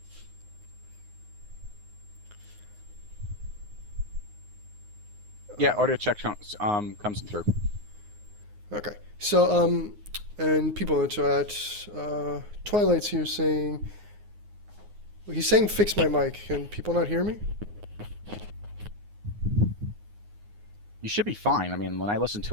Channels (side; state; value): left; late; 9.6 ms